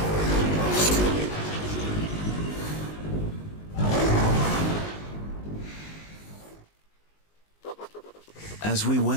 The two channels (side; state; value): right; late; 19 ms